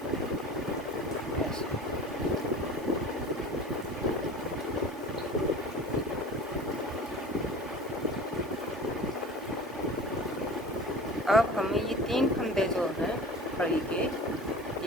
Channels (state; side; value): normal; both; correlation 0.39